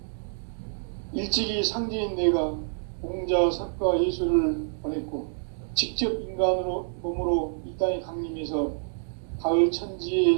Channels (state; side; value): silent; left; digital silence